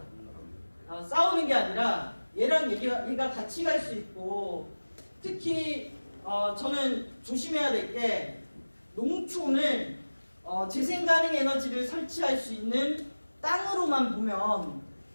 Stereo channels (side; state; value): both; inverted; correlation -1.00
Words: 싸우는 게 아니라 얘랑 얘가 같이 갈 수 있고, 특히 저는 조심해야 될 게 농촌은 재생가능 에너지를 설치할 수 있는 땅으로만 보면